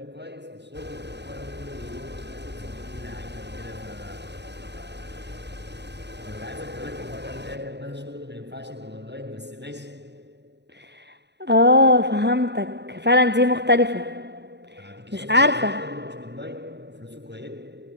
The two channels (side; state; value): left; late; 0.50 ms